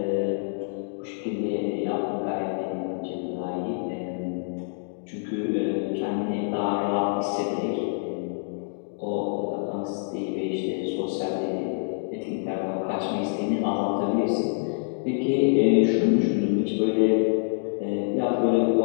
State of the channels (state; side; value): silent; right; digital silence